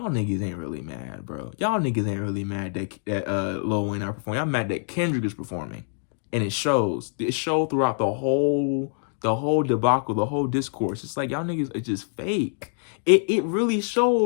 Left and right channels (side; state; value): right; silent; digital silence